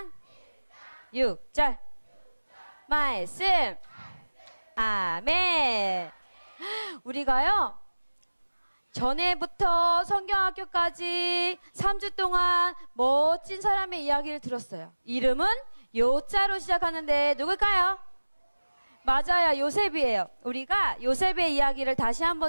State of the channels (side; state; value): both; inverted; correlation -1.00